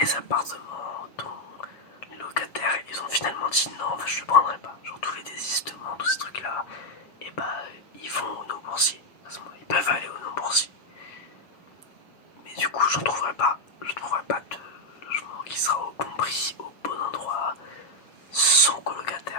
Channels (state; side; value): late; right; 7.2 ms